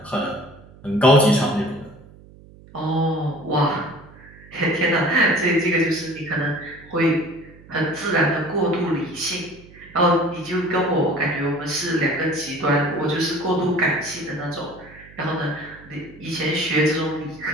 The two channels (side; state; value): right; noise; hum, 22 dB below the sound